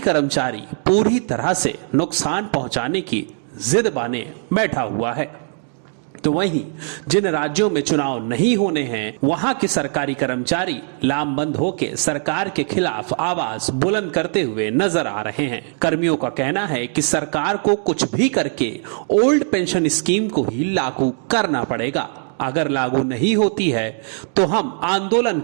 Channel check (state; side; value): silent; left; 56 dB below the other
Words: कर्मचारी पूरी तरह से नुकसान पहुंचाने की जिद बाने बैठा हुआ है। तो वहीं जिन राज्यों में चुनाव नहीं होने हैं, वहां के सरकारी कर्मचारी लामबंद होकर सरकार के खिलाफ आवाज बुलंद करते हुए नजर आ रहे हैं। कर्मियों का कहना है कि सरकार को कुछ भी करके ओल्ड पेंशन स्कीम को ही लागू करना पड़ेगा। अगर लागू नहीं होती है तो हम आंदोलन